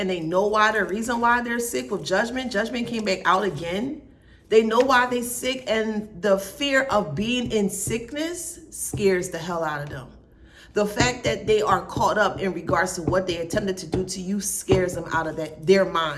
they know why. The reason why they're sick with Judgment. Judgment came back out again. They know why they're sick, and the fear of being in sickness scares the hell out of them. The fact that they are caught up in regards to what they attempted to do to you scares them out of their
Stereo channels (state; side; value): identical; both; correlation 1.00